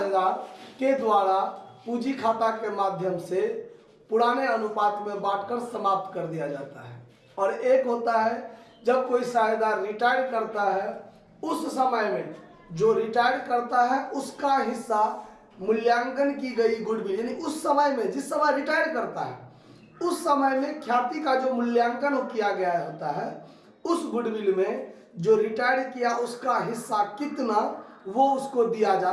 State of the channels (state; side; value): identical; both; correlation 1.00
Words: के द्वारा पूंजी खाता के माध्यम से पुराने अनुपात में बांटकर समाप्त कर दिया जाता है। और एक होता है जब कोई साझेदार रिटायर करता है उस समय में जो रिटायर करता है उसका हिस्सा मूल्यांकन की गई गुडविल यानी उस समय में जिस समय रिटायर करता है उस समय में ख्याति का जो मूल्यांकन किया गया होता है उस गुडविल में जो रिटायर किया उसका हिस्सा कितना वो उसको दिया